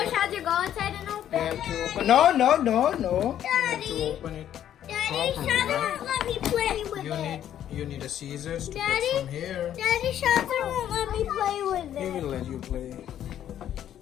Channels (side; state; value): right; quieter; 10.7 dB